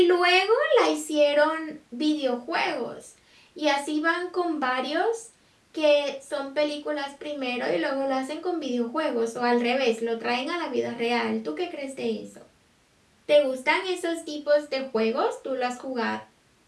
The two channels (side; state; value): both; identical; correlation 1.00